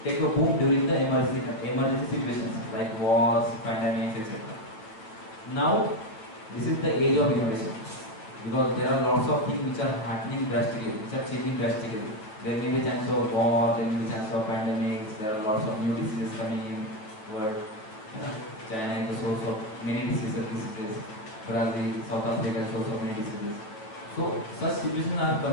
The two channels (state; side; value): late; right; 9.2 ms